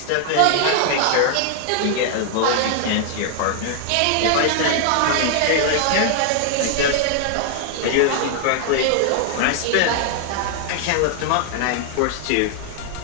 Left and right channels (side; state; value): both; different; correlation 0.00